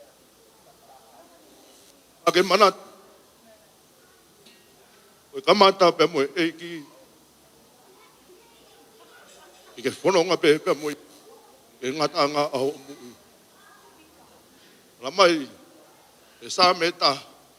Ake manat. Koe kamata pe moe eiki. I ke whanonga pe moe. E ngata anga aho mui. Lamai. E sa meta.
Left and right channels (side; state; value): both; identical; correlation 1.00